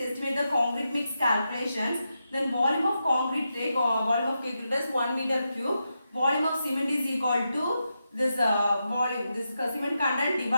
the concrete mix calculations. Then volume of concrete take volume of concrete is 1 meter cube. Volume of cement is equal to this volume, this cement content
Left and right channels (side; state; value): both; inverted; correlation -0.87